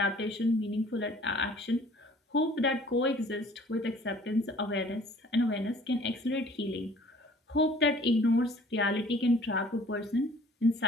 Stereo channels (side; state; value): both; normal; correlation 0.53